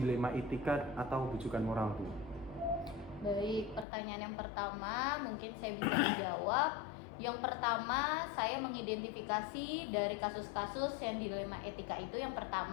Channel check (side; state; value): right; drops out; at 3.9 s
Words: etika atau bujukan moral Bu? Baik, pertanyaan yang pertama mungkin saya bisa menjawab. Yang pertama, saya mengidentifikasi dari kasus-kasus yang dilema etika itu. Yang